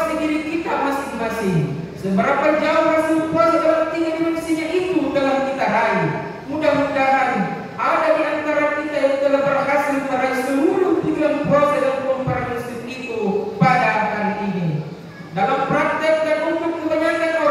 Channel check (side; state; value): both; identical; correlation 1.00